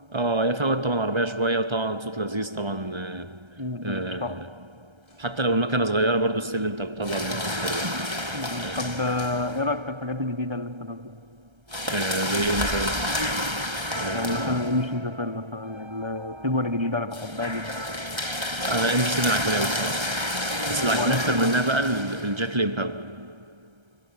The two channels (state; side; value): late; left; 1.3 ms